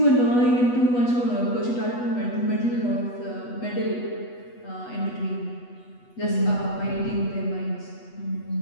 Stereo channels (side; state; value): right; late; 8.2 ms